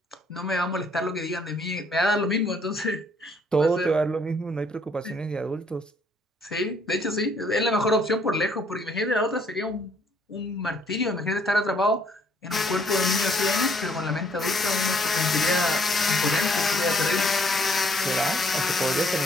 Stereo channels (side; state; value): both; normal; correlation 0.65